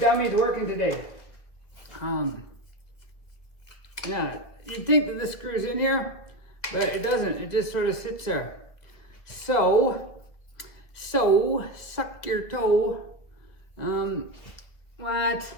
working today. Yeah, you'd think that this screws in here, but it doesn't. It just sort of sits there. So, suck your toe. What?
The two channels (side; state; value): right; late; 1.9 ms